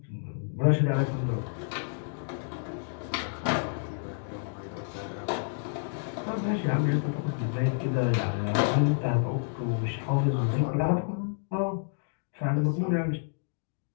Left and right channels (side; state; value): right; silent; digital silence